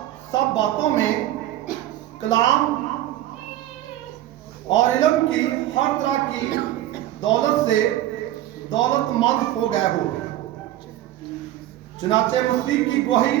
सब बातों में कलाम और इल्म की हर तरह की दौलत से दौलतमंद हो गए हो। चुनाचे मसीह की गवाही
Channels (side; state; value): left; quieter; 13.8 dB